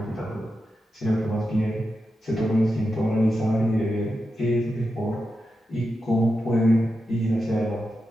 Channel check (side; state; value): both; normal; correlation 0.89